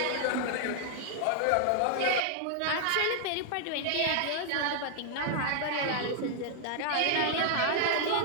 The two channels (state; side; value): different; both; correlation 0.00